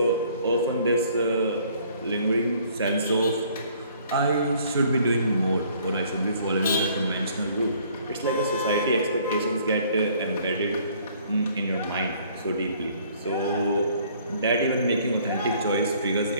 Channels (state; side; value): inverted; both; correlation -0.59